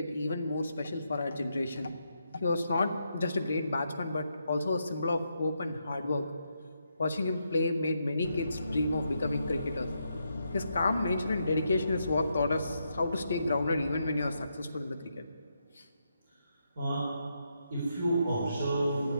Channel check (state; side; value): inverted; both; correlation -0.81